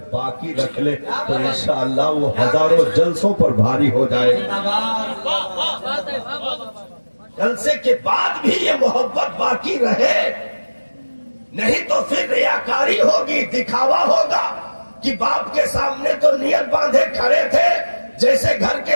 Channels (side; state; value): both; inverted; correlation -1.00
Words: باقی رکھ لے تو انشاءاللہ وہ ہزاروں جلسوں پر بھاری ہو جائے۔ جلسے کے بعد بھی یہ محبت باقی رہے، نہیں تو پھر ریاکاری ہوگی، دکھاوا ہوگا کہ باپ کے سامنے تو نیت باندھے کھڑے تھے، جیسے گھر